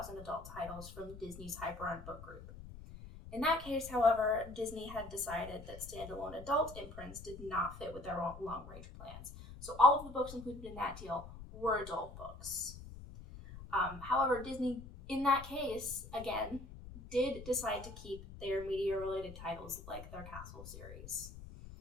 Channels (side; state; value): left; noise; rumble, 14 dB below the sound